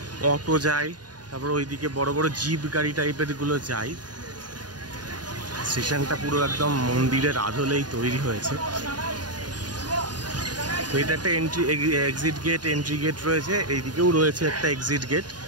অটো যায়, তারপর ওইদিকে বড় বড় জিপ গাড়ি টাইপের গুলো যায়। স্টেশনটা পুরো একদম মন্দিরের আদলেই তৈরি হয়েছে। তো এটা একটা এক্সিট গেট, এন্ট্রি গেট রয়েছে। এইদিকেও রয়েছে একটা এক্সিট গেট।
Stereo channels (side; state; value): left; late; 0.70 ms